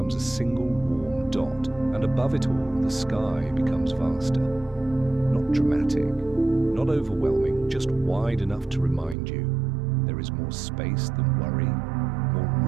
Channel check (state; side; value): drops out; left; at 9.2 s